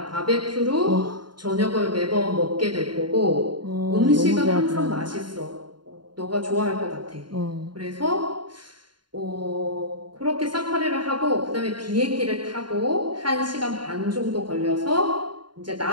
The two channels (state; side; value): late; left; 0.71 ms